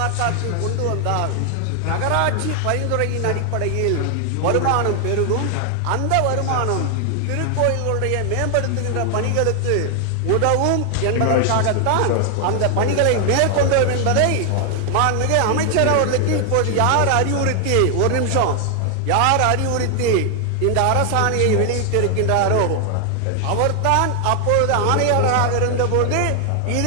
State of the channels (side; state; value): both; different; correlation 0.00